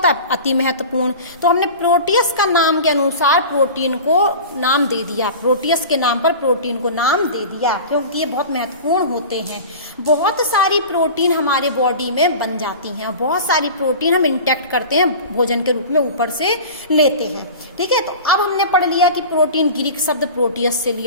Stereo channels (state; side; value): inverted; both; correlation -0.35